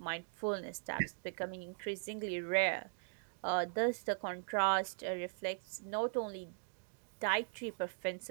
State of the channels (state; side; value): silent; left; digital silence